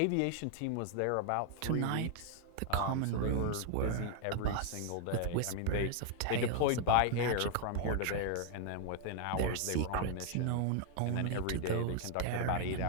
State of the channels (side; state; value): both; different; correlation 0.00